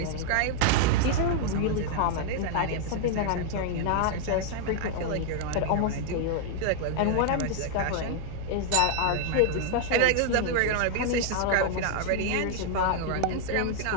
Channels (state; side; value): different; both; correlation 0.00